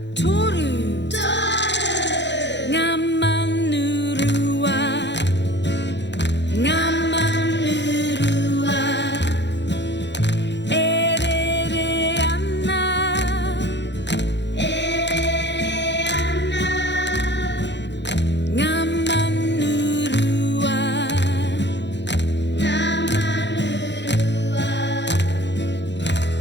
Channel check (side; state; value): right; late; 0.52 ms